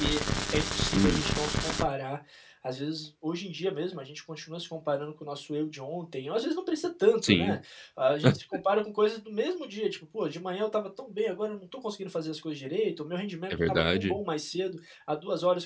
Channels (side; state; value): both; identical; correlation 1.00